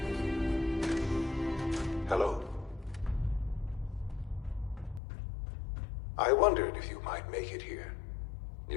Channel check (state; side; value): drops out; right; at 5.0 s